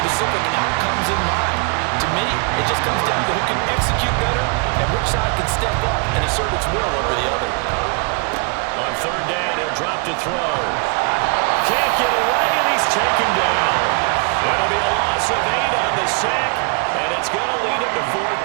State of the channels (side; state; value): left; quieter; 36.2 dB